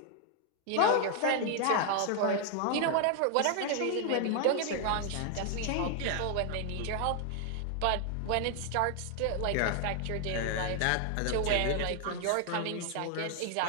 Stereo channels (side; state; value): both; different; correlation 0.00